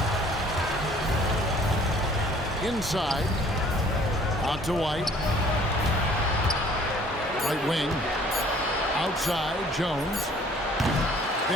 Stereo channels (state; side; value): normal; both; correlation 0.56